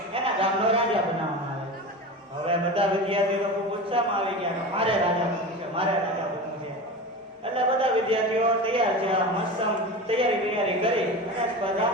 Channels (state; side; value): normal; both; correlation 0.28